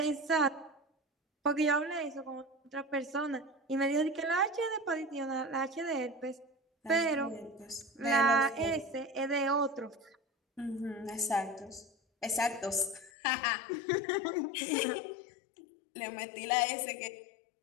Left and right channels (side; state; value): right; drops out; at 13.1 s